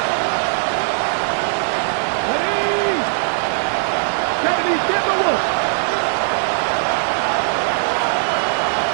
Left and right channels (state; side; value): silent; left; 60 dB below the other